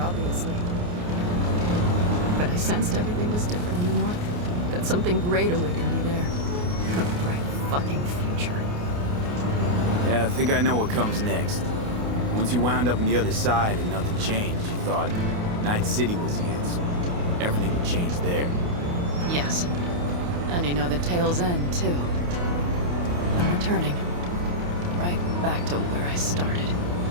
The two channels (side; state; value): left; late; 28 ms